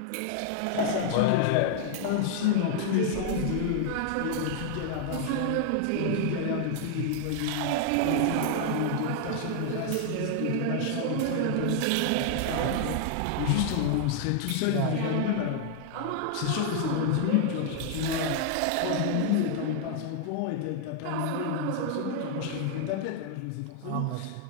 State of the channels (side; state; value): both; different; correlation 0.00